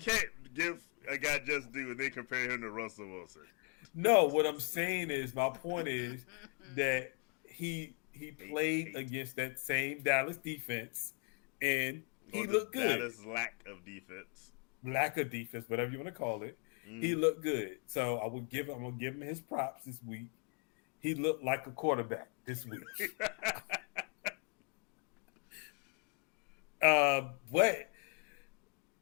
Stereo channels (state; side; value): quieter; right; 39.4 dB